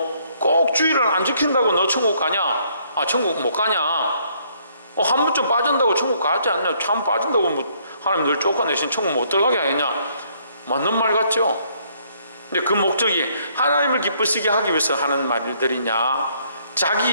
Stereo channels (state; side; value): inverted; both; correlation -0.67